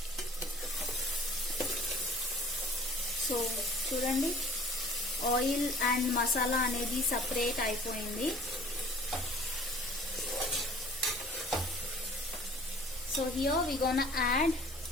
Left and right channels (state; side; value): normal; both; correlation 0.49